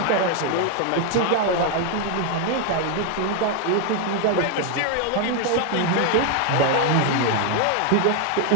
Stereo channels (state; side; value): different; both; correlation 0.00